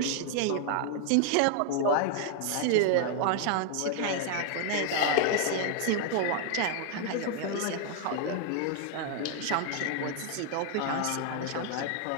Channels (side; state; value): both; different; correlation 0.00